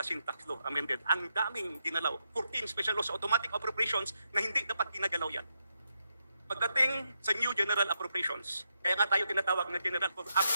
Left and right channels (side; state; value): both; inverted; correlation -0.83